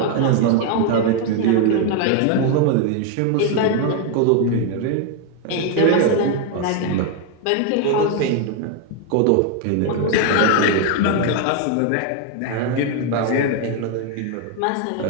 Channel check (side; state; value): both; different; correlation 0.01